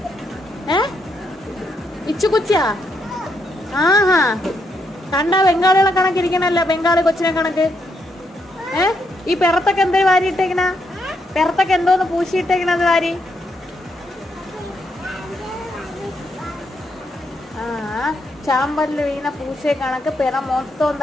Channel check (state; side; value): normal; both; correlation 0.78